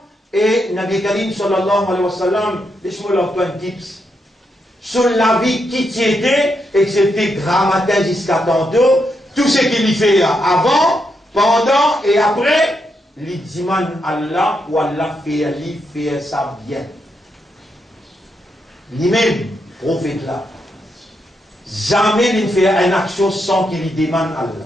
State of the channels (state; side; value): normal; both; correlation 0.81